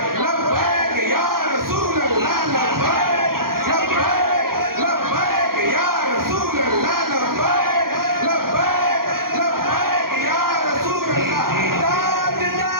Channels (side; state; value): left; late; 0.93 ms